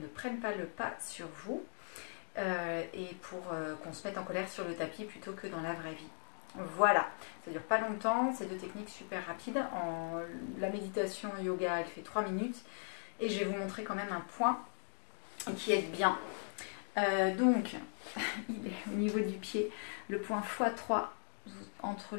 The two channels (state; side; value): silent; right; 52 dB below the other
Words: prenne pas le pas sur vous et pour qu'on se mette en colère sur le tapis plutôt que dans la vraie vie. Voilà, ça dure pas longtemps, c'est deux techniques super rapides. La méditation yoga, elle fait 3 minutes et je vais vous montrer quand même un point qui aide bien. Donc, il est au niveau du pied, le point x3 entre